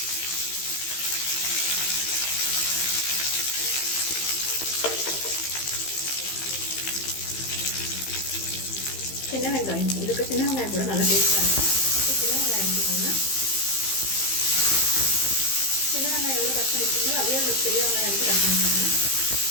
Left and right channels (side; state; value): right; late; 15 ms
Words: சின்ன வெங்காயம். இதுக்கு சின்ன வெங்காயம் கூட நல்லா டேஸ்ட்டாக இருக்கும். சின்ன வெங்காயம் எடுத்துக்கோங்க. சின்ன வெங்காயம் எவ்வளோ கட் பண்ணிக்கோங்க அதே ஒரு பெரிய வெங்காயம் எடுத்து கட் பண்ணிக்கோங்க.